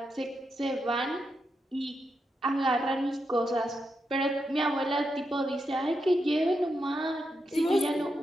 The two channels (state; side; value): normal; both; correlation 0.85